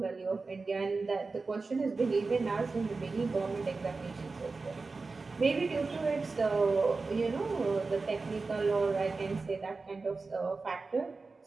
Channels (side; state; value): left; quieter; 4.0 dB